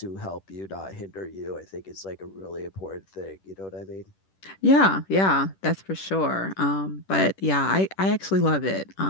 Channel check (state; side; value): late; right; 10 ms